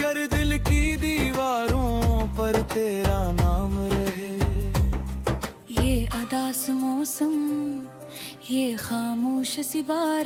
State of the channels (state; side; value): identical; both; correlation 1.00